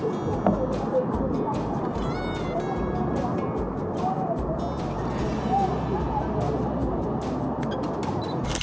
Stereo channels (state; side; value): identical; both; correlation 1.00